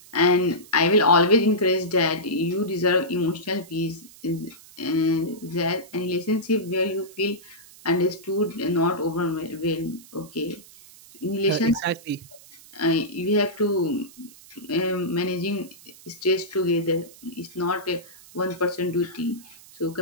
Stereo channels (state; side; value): noise; right; hiss, 22 dB below the sound